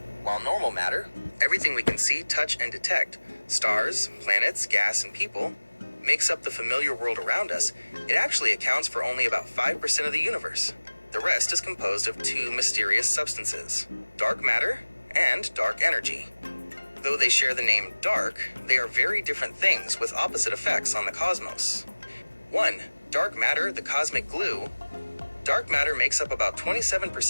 While normal matter, everything we can see, touch, and detect, stars, planets, gas, and people, makes up the familiar world around us, it actually accounts for only about 5% of the universe. The rest is composed of two mysterious substances, dark matter and dark energy. Though they share the name dark, they are very different things with opposite effects on the cosmos. 1. Dark matter, the cosmic glue. Dark matter makes up about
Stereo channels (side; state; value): both; inverted; correlation -1.00